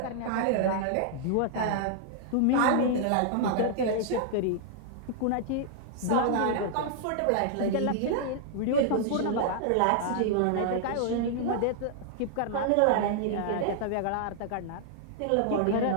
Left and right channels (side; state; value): both; different; correlation -0.01